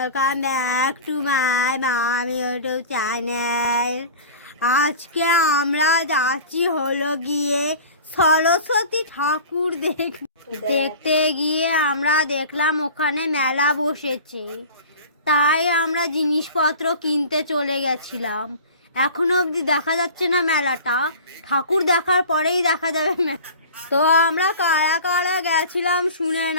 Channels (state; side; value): inverted; both; correlation -0.38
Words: back to my মামি YouTube channel. আজকে আমরা যাচ্ছি হলো গিয়ে সরস্বতী ঠাকুর দেখতে গিয়ে আমরা দেখলাম ওখানে মেলা বসেছে, তাই আমরা জিনিসপত্র কিনতে চলে গেছিলাম। এখনো অবধি দেখা যাচ্ছে না মেলাটা, ঠাকুর দেখার পরেই দেখা যাবে মেলা। তো আমরা কারা কারা গেছিলাম শুনে